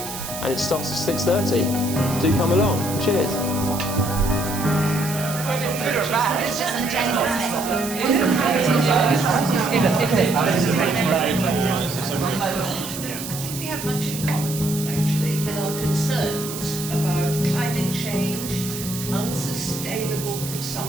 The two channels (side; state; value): right; noise; hiss, 9 dB below the sound